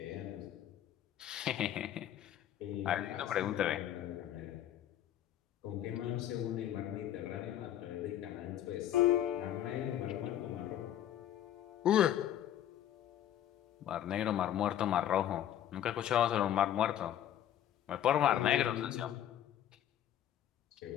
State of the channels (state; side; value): quieter; right; 11.2 dB